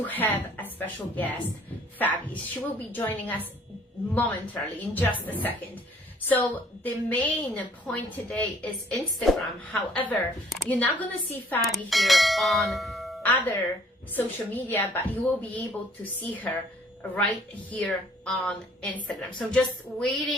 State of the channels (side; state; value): both; normal; correlation 0.58